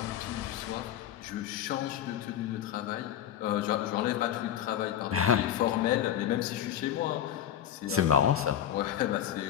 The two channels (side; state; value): right; quieter; 10.5 dB